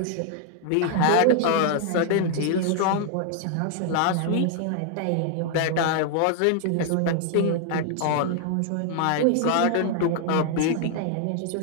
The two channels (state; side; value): different; both; correlation 0.00